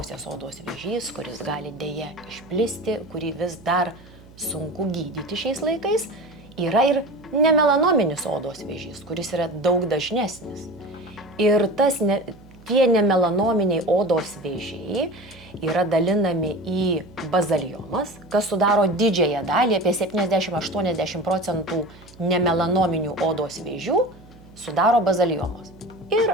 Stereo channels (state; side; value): noise; right; hum, 23 dB below the sound